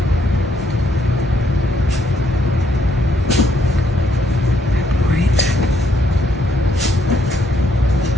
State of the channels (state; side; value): normal; both; correlation 0.73